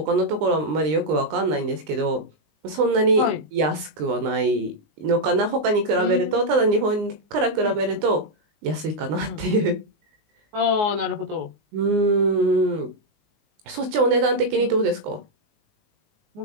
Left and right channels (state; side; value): late; left; 20 ms